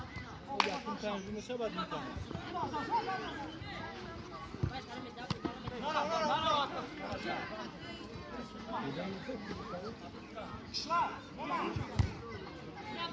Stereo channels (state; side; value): identical; both; correlation 1.00